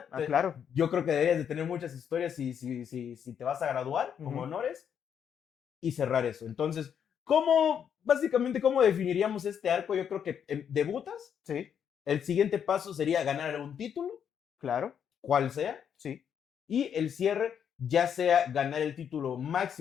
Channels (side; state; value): right; quieter; 8.2 dB